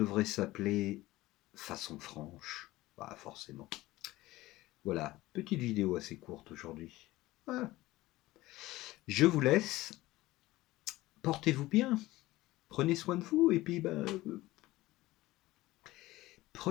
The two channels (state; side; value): quieter; right; 18.0 dB